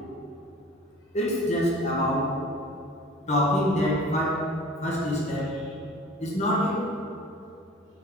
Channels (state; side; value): normal; both; correlation 0.44